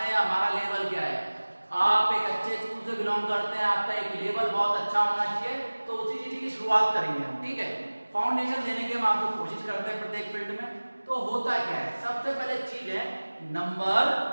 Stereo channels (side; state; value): both; inverted; correlation -1.00